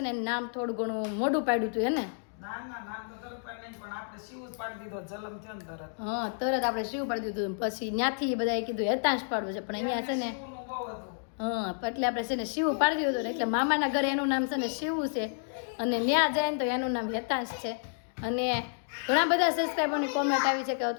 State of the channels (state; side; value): silent; right; digital silence